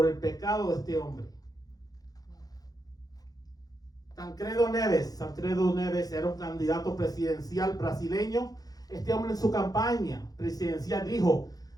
el pecado de este hombre. Tancredo Neves era un candidato presidencial brasileño. Este hombre en su campaña presidencial dijo:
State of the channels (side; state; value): right; late; 0.18 ms